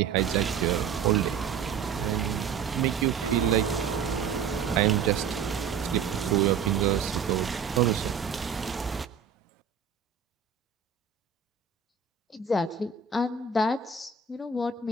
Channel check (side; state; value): left; quieter; 6.5 dB